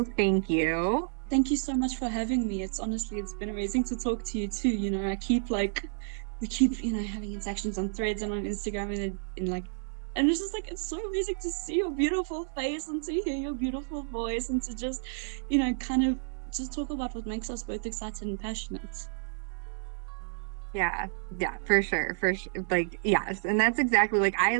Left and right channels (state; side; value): silent; left; digital silence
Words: thank you. Thank you so much for having me. It's honestly, it's been amazing to talk to you too. You know, we keep, you know, having interactions on Threads and on Instagram and it's just like, it's so amazing to see your beautiful face and to hear your beautiful voice and to just, you know, kind of just talk about what makes us both excited and passionate. Yeah, yeah, for sure, for sure. Like, yes, and that's exactly like I